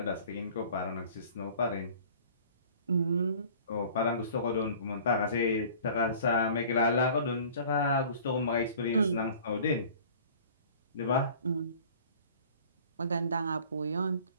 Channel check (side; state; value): both; inverted; correlation -0.48